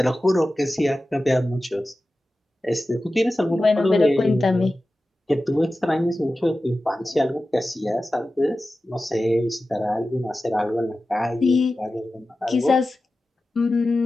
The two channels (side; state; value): both; normal; correlation 0.94